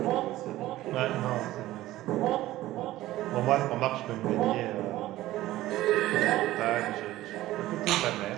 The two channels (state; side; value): quieter; left; 15.9 dB